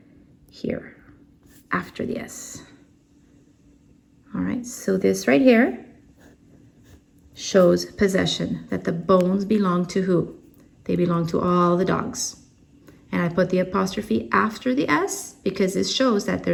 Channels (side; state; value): both; identical; correlation 1.00